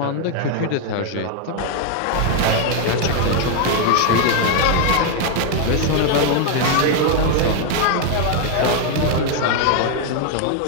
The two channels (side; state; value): both; different; correlation 0.01